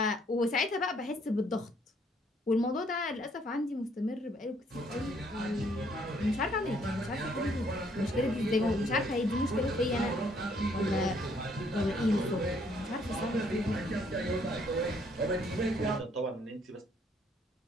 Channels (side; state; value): both; normal; correlation 0.66